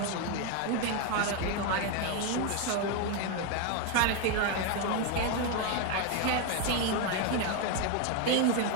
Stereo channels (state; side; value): different; both; correlation 0.02